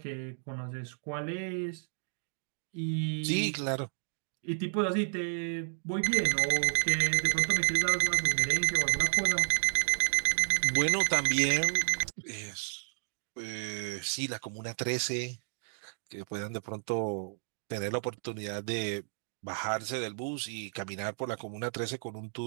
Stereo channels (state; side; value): silent; left; digital silence